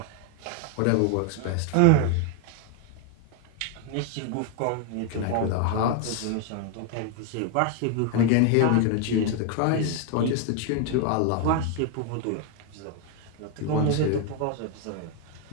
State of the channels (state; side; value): different; both; correlation 0.00